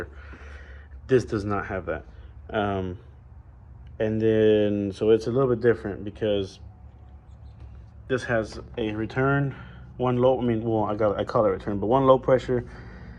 This does not have that. And then so it's a little bit different because this has a return, one low, I call it return, but one low pressure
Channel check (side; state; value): both; identical; correlation 1.00